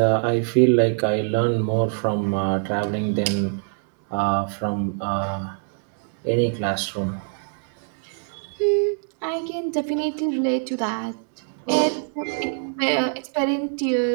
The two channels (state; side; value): silent; left; 57 dB below the other